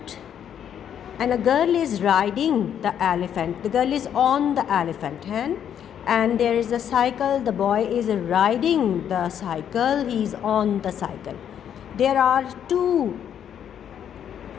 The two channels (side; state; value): right; quieter; 9.1 dB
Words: and a girl is riding the elephant. The girl is on the elephant, and there is a cycle. The boy is riding the cycle. He is on the cycle. There are two